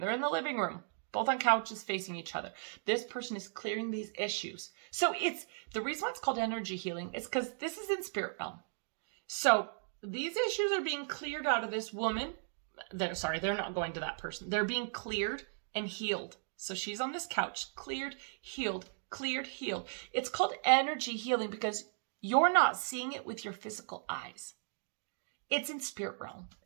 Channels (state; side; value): silent; left; digital silence